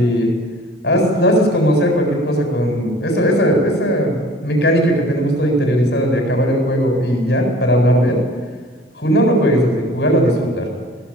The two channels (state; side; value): normal; both; correlation 0.48